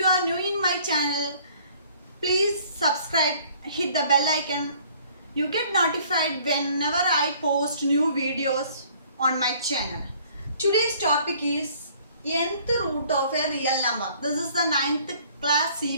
are new in my channel, please subscribe, hit the bell icon. You get notified whenever I post new videos on my channel. Today's topic is nth root of a real number. This is the 9th class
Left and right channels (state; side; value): inverted; both; correlation -0.57